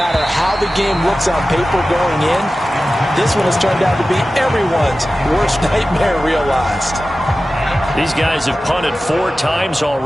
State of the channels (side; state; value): both; normal; correlation 0.95